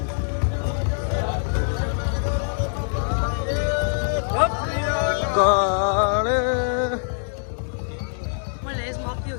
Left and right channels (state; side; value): silent; right; digital silence